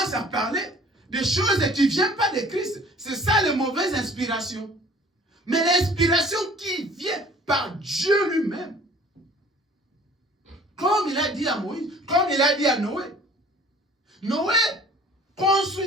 à parler des choses qui ne viennent pas de Christ. C'est ça les mauvaises inspirations. Mais l'inspiration qui vient par Dieu lui-même, comme il a dit à Moïse, comme il a dit à Noé. Noé,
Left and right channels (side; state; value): both; normal; correlation 0.51